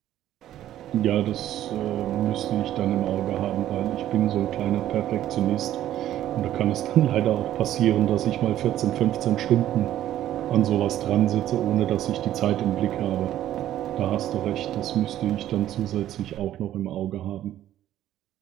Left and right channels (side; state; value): left; quieter; 12.5 dB